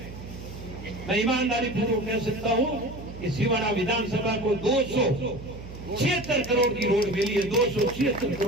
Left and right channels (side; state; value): right; noise; hum, 13 dB below the sound